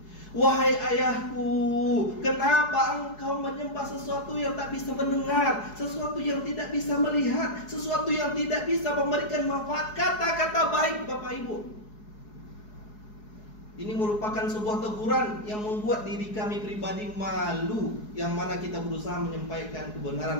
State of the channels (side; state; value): right; late; 4.7 ms